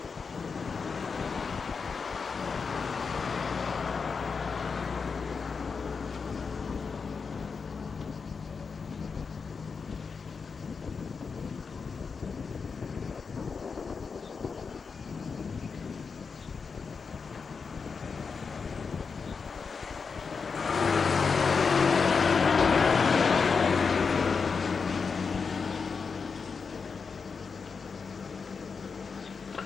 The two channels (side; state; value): right; quieter; 5.3 dB